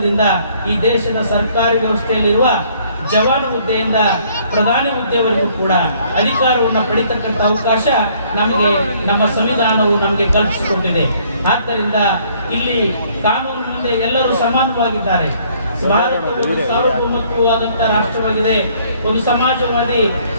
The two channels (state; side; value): inverted; both; correlation -0.62